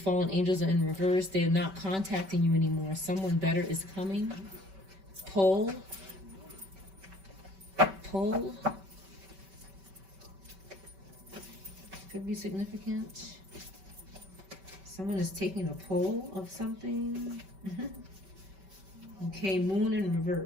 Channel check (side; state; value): left; late; 5.2 ms